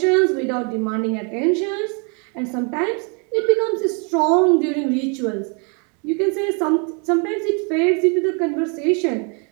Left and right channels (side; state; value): left; quieter; 35.7 dB